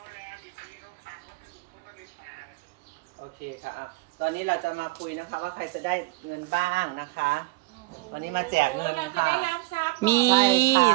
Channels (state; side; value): quieter; left; 21.9 dB